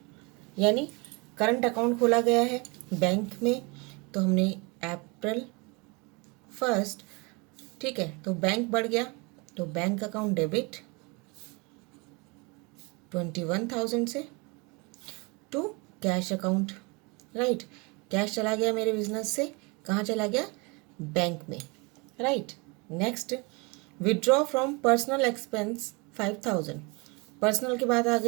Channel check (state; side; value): quieter; left; 28.9 dB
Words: यानी करंट अकाउंट खोला गया है बैंक में। तो हमने अप्रैल 1, ठीक है, तो बैंक बढ़ गया, तो बैंक अकाउंट डेबिट 21,000 से to cash account. Right, cash चला गया मेरे बिजनेस से, कहाँ चला गया, बैंक में। Right, next withdraw from personal expense 5,000। Personal की बात आ